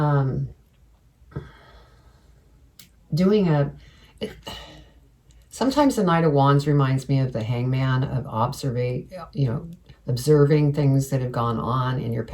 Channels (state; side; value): identical; both; correlation 1.00